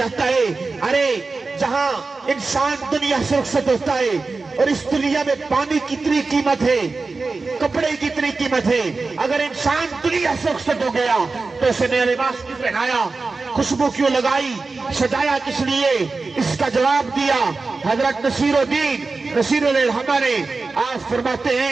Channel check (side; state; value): left; quieter; 3.9 dB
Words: ہے۔ ارے جہاں انسان دنیا سے رخصت ہوتا ہے اور اس دنیا میں پانی کی اتنی قیمت ہے، کپڑے کی اتنی قیمت ہے، اگر انسان دنیا سے رخصت ہو گیا تو اسے نیا لباس کیوں پہنایا، خوشبو کیوں لگائی، سجایا کس لیے؟ اس کا جواب دیا حضرت نصیر الدین ہمارے آپ فرماتے